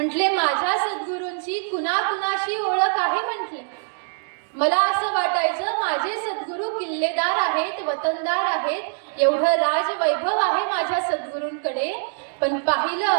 माझ्या सद्गुरूंची कुणाकुणाशी ओळख आहे. म्हटले मला असं वाटायचं माझे सद्गुरू किल्लेदार आहेत, वतनदार आहेत, एवढं राजवैभव आहे माझ्या सद्गुरूंकडे. पण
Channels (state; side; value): silent; left; digital silence